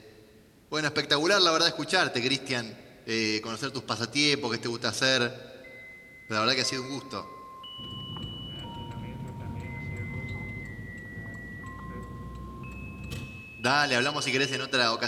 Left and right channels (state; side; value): identical; both; correlation 1.00